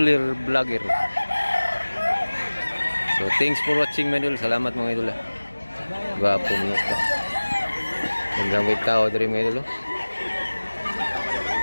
vlogger. So thanks for watching mga idol. Salamat mga idol. Gwapo mo ka. Magandang may tao dari mga idol.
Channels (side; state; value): both; inverted; correlation -1.00